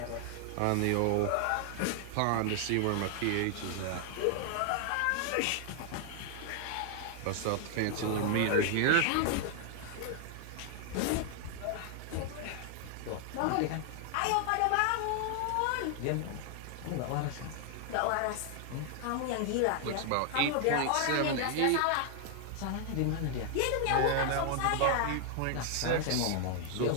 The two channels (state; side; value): different; both; correlation 0.00